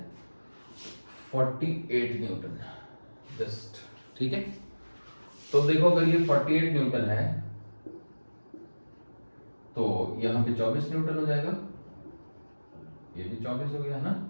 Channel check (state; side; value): inverted; both; correlation -1.00